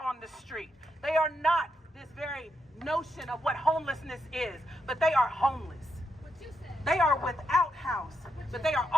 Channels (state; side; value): normal; both; correlation 0.82